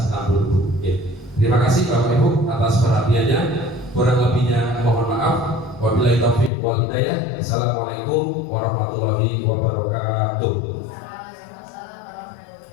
6 dulu Bu. Oke. Terima kasih Bapak Ibu atas perhatiannya. Kurang lebihnya mohon maaf. Wabillahi taufiq wal hidayah. Assalamualaikum warahmatullahi wabarakatuh.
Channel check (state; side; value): drops out; right; at 6.5 s